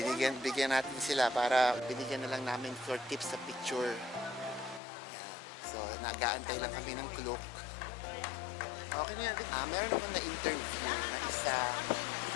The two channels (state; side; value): drops out; right; at 4.8 s